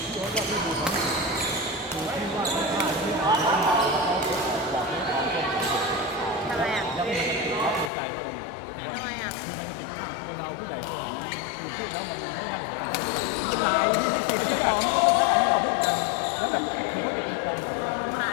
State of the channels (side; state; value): right; drops out; at 7.9 s